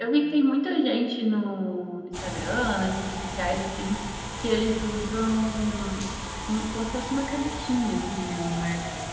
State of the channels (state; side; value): identical; both; correlation 1.00